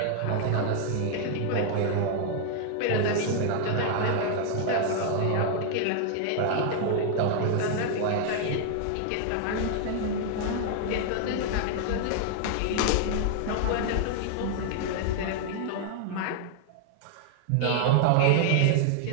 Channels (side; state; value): both; different; correlation 0.00